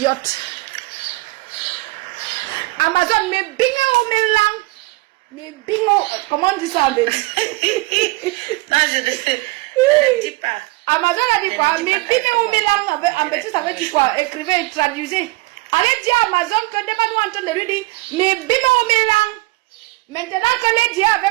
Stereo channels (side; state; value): left; quieter; 22.0 dB